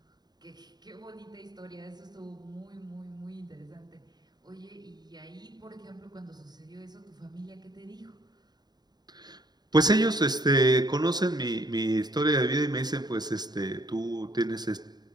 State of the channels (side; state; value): left; late; 0.20 ms